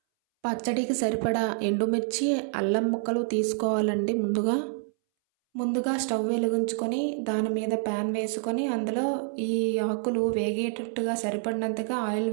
పచ్చడికి సరిపడా ఎండుమిర్చి, అల్లం ముక్కలు తీసుకోవాలండి ముందుగా స్టవ్ వెలిగించుకొని దాని మీద ప్యాన్ వేసుకొని అందులో ఈ ఆకులు వేగేటట్టుగా సరిపడినంతగా ఆయిల్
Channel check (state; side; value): silent; left; 60 dB below the other